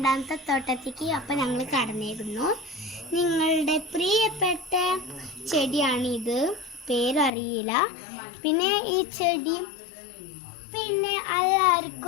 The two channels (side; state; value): right; drops out; at 7.3 s